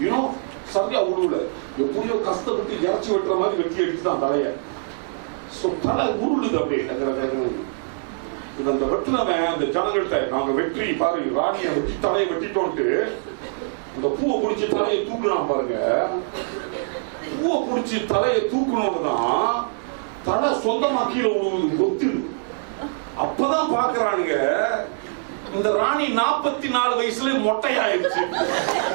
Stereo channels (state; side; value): silent; left; digital silence